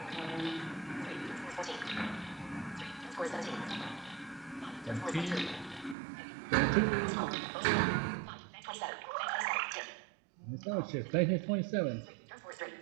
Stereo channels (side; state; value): left; drops out; at 6.0 s